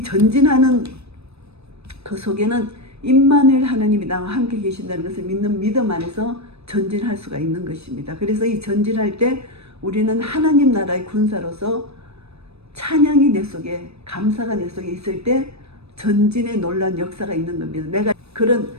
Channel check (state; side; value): late; left; 0.79 ms